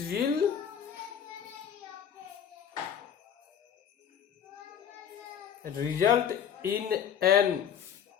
will result in an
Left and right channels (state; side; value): quieter; right; 8.7 dB